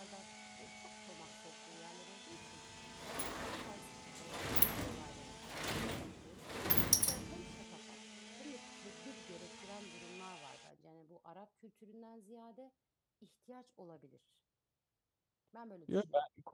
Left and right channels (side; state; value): both; identical; correlation 1.00